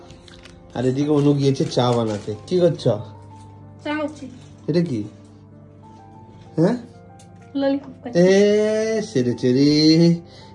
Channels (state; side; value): identical; both; correlation 1.00